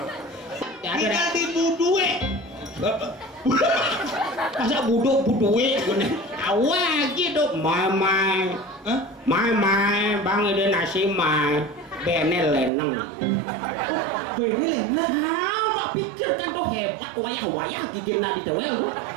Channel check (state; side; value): drops out; left; at 12.7 s